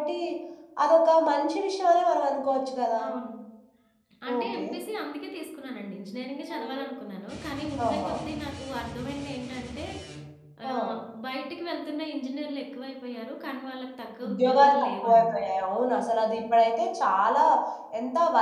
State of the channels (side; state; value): both; identical; correlation 1.00